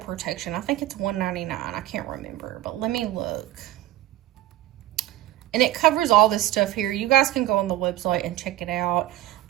I think it's $199. I can't remember, but let me look. And it covers all this stuff here. You guys can go on the website and check it out.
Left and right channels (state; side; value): quieter; left; 14.7 dB